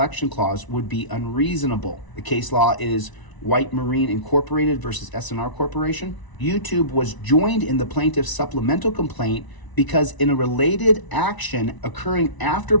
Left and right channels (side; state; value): right; late; 1.0 ms